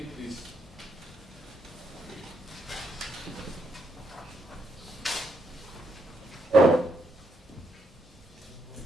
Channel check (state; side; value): normal; both; correlation 0.77